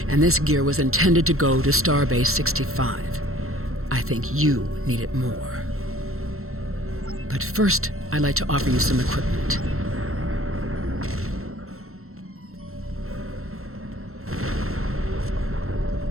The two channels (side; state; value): left; late; 0.62 ms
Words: and this gear was intended to go to Starbase 65. I think you need it more. But first, I'd like to offer you some equipment.